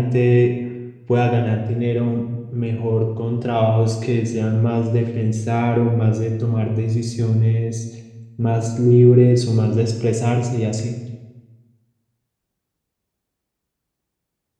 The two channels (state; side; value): identical; both; correlation 1.00